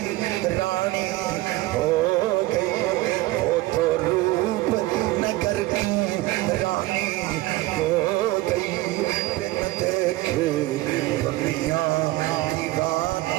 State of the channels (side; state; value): left; quieter; 18.3 dB